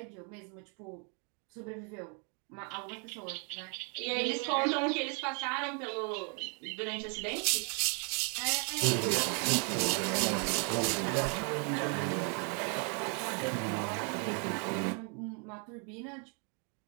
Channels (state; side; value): quieter; left; 37.9 dB